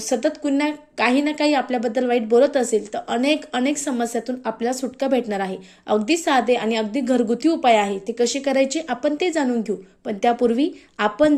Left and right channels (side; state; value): both; identical; correlation 1.00